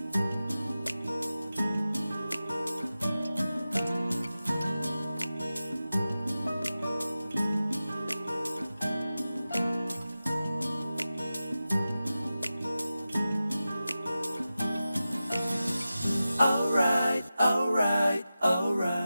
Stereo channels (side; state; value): both; inverted; correlation -0.94